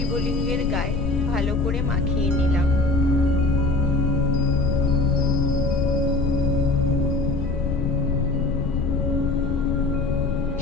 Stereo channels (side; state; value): left; noise; rumble, 3 dB below the sound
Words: গায়ে ভালো করে মাখিয়ে নিলাম।